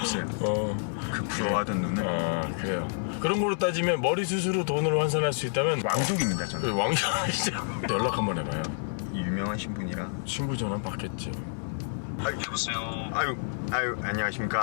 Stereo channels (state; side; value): silent; right; digital silence